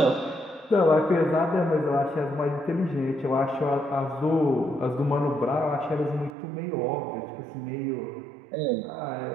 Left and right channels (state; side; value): drops out; left; at 6.4 s